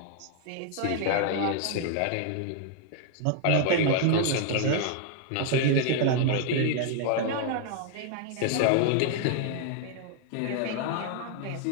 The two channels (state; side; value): different; both; correlation 0.00